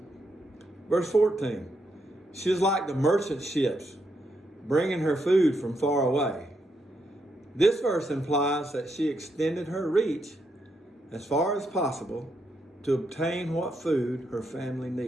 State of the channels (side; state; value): both; normal; correlation 0.80